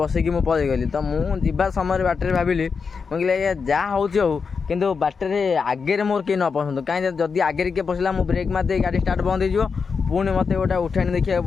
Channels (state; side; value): quieter; right; 5.4 dB